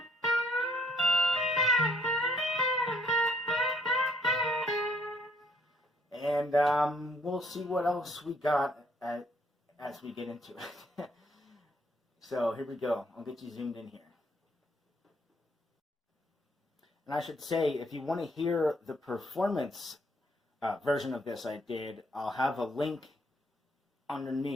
and we'll see what else we got as we get into it. So here we go. I'll get you zoomed in here. And I should say, if you want to hear the performance version of this I did, I'll have a link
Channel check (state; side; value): normal; both; correlation 0.66